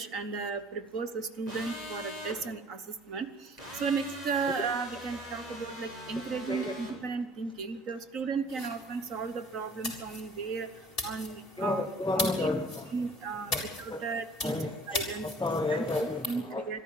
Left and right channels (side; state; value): both; normal; correlation 0.52